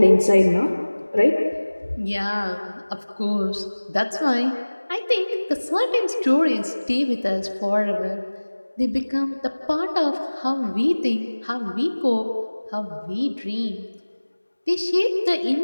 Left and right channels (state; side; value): inverted; both; correlation -1.00